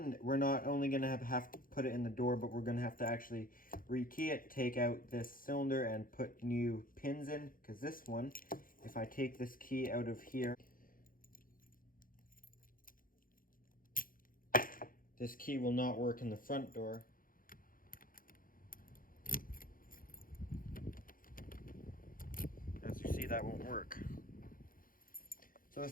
we're not only going to have to put it in the door, but we're going to have to actually rekey it, take out this cylinder and put new pins in. Because this one, if I take this key out of here, this key will not work in the front door. As you see, that won't work. So the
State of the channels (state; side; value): late; right; 0.41 ms